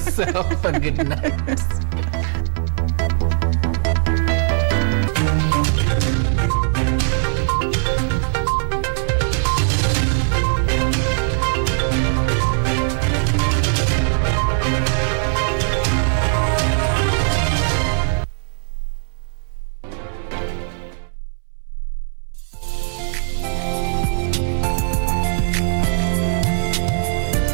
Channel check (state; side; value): silent; left; digital silence